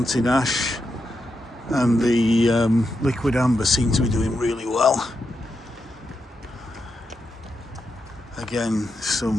ash and the liquid amber seem to be doing really well. Again,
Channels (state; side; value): normal; both; correlation 0.85